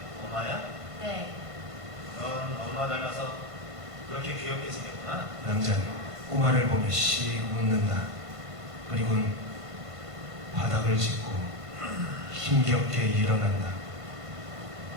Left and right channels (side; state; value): left; late; 1.5 ms